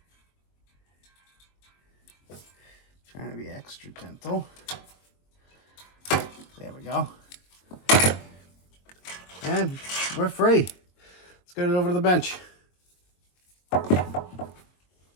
Trying to be extra gentle. There we go. And we're free. Let's get it over to the bench.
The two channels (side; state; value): right; late; 22 ms